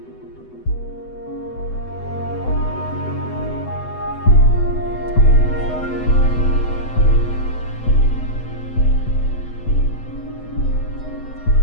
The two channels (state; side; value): late; right; 8.0 ms